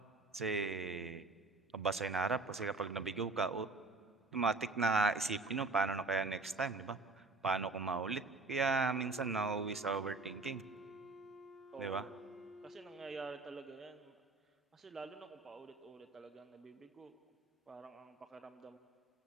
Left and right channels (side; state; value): left; quieter; 3.6 dB